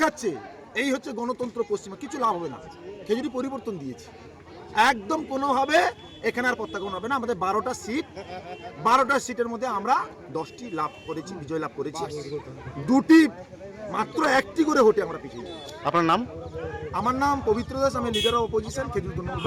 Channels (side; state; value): both; identical; correlation 1.00